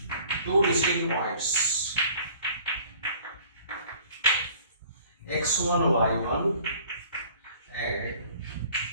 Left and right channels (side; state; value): both; inverted; correlation -0.52